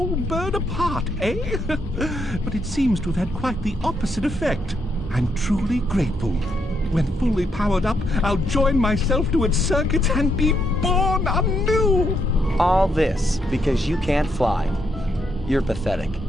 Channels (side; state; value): both; normal; correlation 0.77